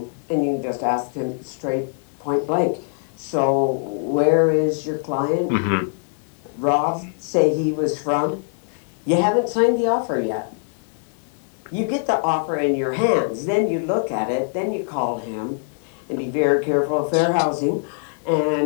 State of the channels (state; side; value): silent; right; digital silence